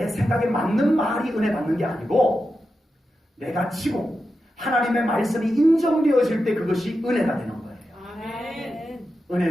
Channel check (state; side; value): normal; both; correlation 0.90